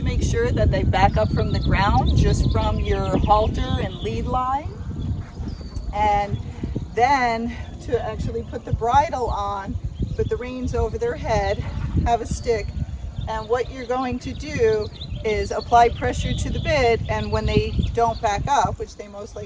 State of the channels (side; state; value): both; identical; correlation 1.00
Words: make sure that they back up from the ground, just from your halter and lead line. And then to actually put the bridle on, put the reins over their head, have a stick. And what you're going to do is apply pressure to the bit, and when they don't back up, which they most